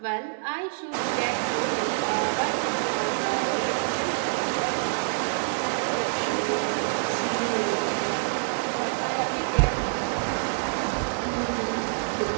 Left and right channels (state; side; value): silent; left; 61 dB below the other